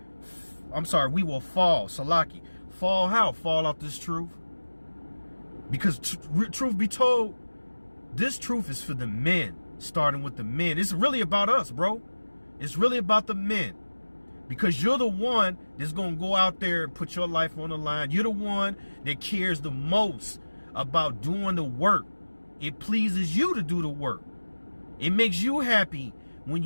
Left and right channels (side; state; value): both; inverted; correlation -1.00